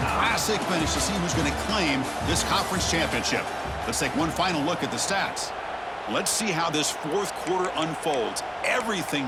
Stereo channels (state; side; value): identical; both; correlation 1.00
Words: classic finish to see who's going to claim this conference championship. Let's take one final look at the stats. Let's see how this fourth quarter unfolds.